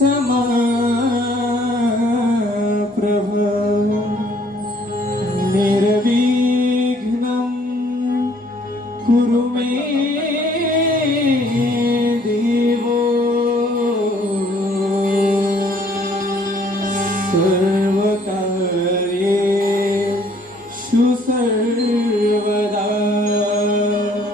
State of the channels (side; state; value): both; normal; correlation 0.61